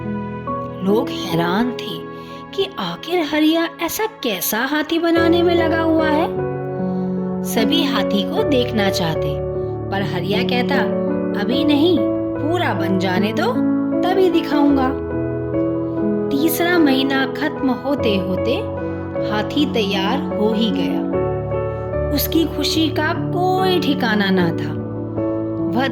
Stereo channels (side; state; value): both; identical; correlation 1.00